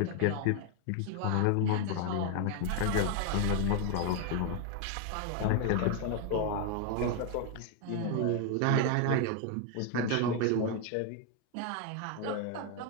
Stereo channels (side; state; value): both; different; correlation 0.01